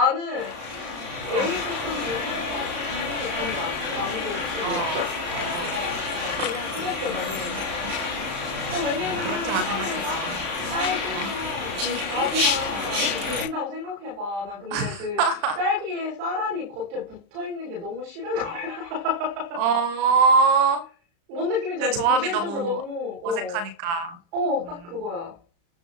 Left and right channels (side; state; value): left; late; 35 ms